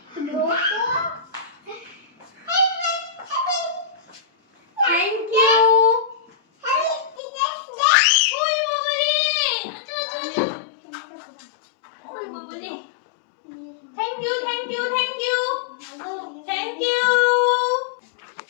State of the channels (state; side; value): drops out; right; at 7.2 s